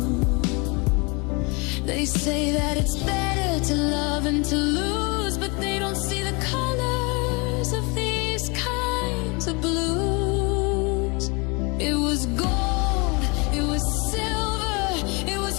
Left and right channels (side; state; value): right; quieter; 29.5 dB